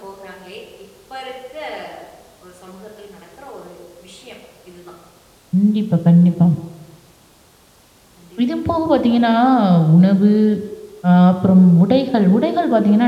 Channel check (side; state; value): both; identical; correlation 1.00